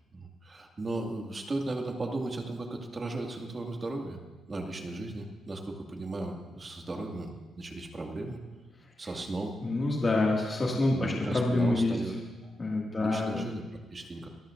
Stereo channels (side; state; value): both; normal; correlation 0.88